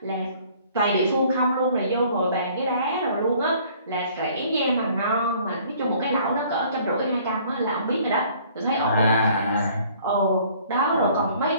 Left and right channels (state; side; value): inverted; both; correlation -0.56